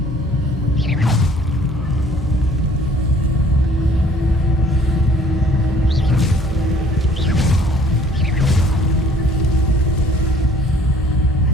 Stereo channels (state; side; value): normal; both; correlation 0.56